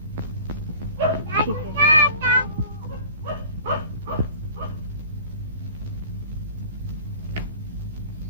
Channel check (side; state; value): both; inverted; correlation -0.44